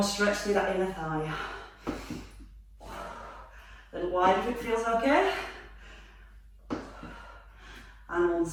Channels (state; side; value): identical; both; correlation 1.00